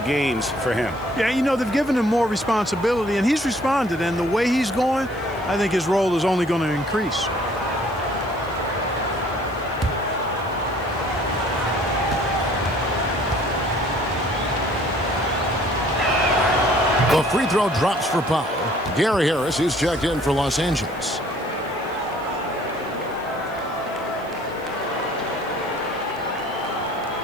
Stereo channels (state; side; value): noise; left; hiss, 26 dB below the sound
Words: games for him. Yeah, you know, they've given him more responsibility, and he's responded. And the way he's going, I think his role is only going to increase. The free throw drops for Powell. Gary Harris is checked in for Los Angeles.